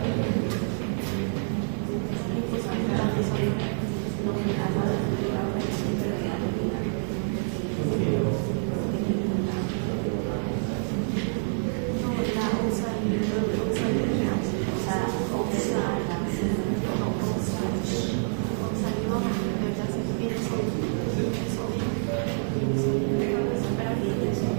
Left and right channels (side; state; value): left; silent; digital silence